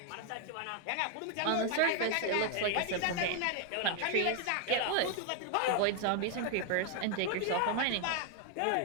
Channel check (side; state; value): both; different; correlation 0.00